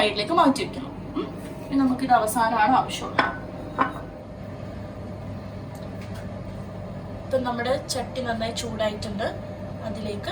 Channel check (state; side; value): identical; both; correlation 1.00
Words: മാറ്റി വെക്കണം. നമുക്കിത് അവസാനമാണ് ആവശ്യമുള്ളത്. ഇപ്പം നമ്മുടെ ചട്ടി നന്നായി ചൂടായിട്ടുണ്ട്. അതിലേക്ക്